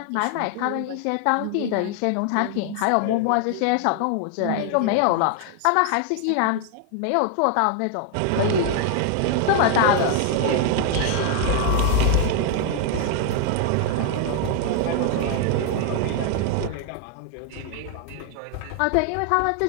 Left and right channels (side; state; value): both; different; correlation 0.00